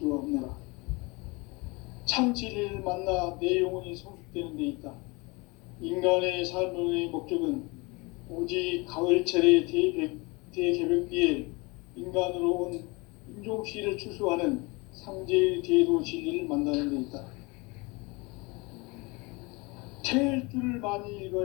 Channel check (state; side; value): quieter; right; 26.6 dB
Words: 없노라. 참 진리를 만나 내 영혼이 성숙되는 데 있다. 인간의 삶의 목적은 오직 가을철의 대개벽기에 인간으로 온 인종시를 추수하는 상제의 대도 진리를 만나는 데 있다. 태일주를 많이